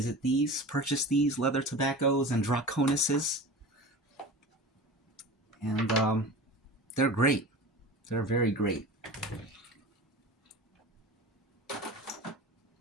these, purchase these leather tobaccos and Draconises, and they're great. They're very great.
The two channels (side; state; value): both; normal; correlation 0.34